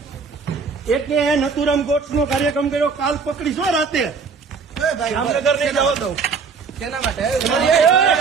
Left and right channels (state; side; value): quieter; left; 5.3 dB